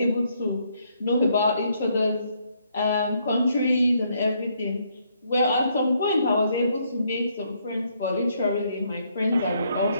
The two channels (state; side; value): inverted; both; correlation -0.72